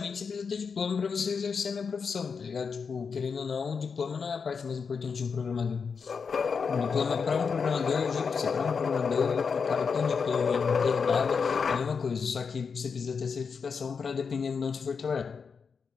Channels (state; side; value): quieter; right; 5.7 dB